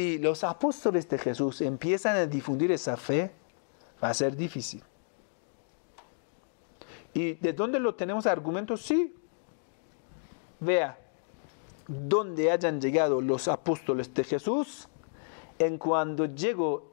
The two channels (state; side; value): silent; right; digital silence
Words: los apóstoles de Jesús empiezan a difundir esa fe, va a ser difícil. ¿Y de dónde lo tenemos argumentos? Sí. Vea, donde hayan llegado los apóstoles de Jesús, en cuando llegó